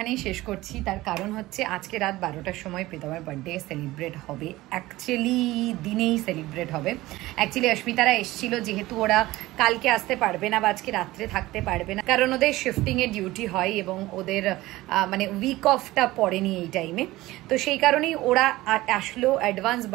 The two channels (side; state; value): left; quieter; 18.0 dB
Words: শেষ করছি। তার কারণ হচ্ছে আজকে রাত 12টার সময় প্রীতমের বার্থডে সেলিব্রেট হবে, অ্যাকচুয়ালি দিনেই সেলিব্রেট হবে। অ্যাকচুয়ালি অস্মিতারা এসেছিল, যেহেতু ওরা কালকে আসতে পারবে না বা আজকে রাত্রে থাকতে পারবে না, কারণ ওদের শিফটিংয়ের ডিউটি হয় এবং ওদের মানে উইক অফটা পড়েনি এই টাইমে। তো সেই কারণেই ওরা আসলো, অ্যাডভান্স